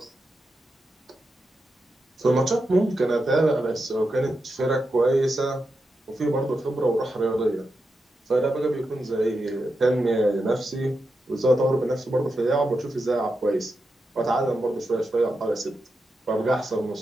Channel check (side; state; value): both; normal; correlation 0.88